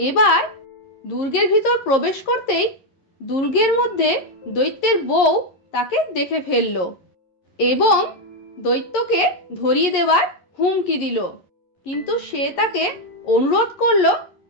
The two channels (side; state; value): right; late; 11 ms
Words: এবার দুর্গের ভিতর প্রবেশ করতেই দুর্গের মধ্যে দৈত্যের বউ তাকে দেখে ফেলল এবং দৈত্যকে ধরিয়ে দেওয়ার হুমকি দিল। কিন্তু সে তাকে অনুরোধ করলো